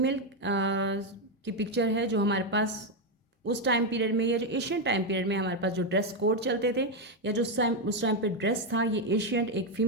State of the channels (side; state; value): both; normal; correlation 0.05